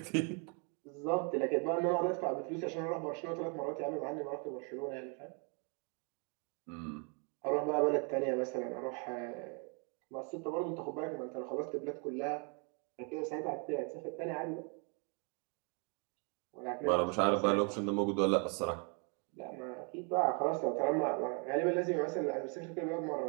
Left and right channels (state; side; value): quieter; left; 37.0 dB